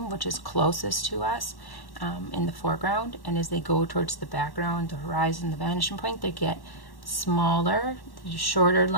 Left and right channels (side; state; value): right; late; 1.1 ms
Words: which is closest to us in the foreground. And as they go towards the background, the horizon, the vanishing point, they get smaller, shorter